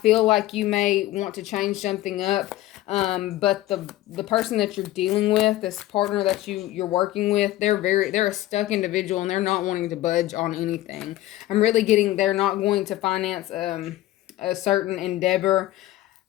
like you may want to change something up, but the person that you're dealing with, this partner that you're working with, they're a stuck individual, and they're not wanting to budge on anything. I'm really getting they're not going to finance a certain endeavor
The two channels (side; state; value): right; quieter; 15.6 dB